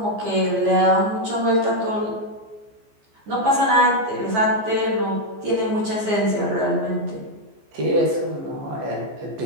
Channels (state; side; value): late; left; 14 ms